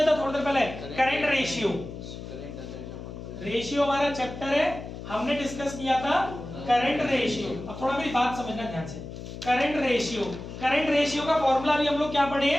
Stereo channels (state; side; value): noise; left; hum, 11 dB below the sound